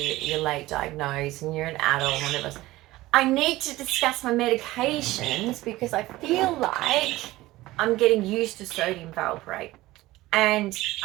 late diagnosed and you're an adult, one of us. I need to discuss my medications because I feel like I'm getting used to sodium valproate. And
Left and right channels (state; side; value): quieter; left; 17.8 dB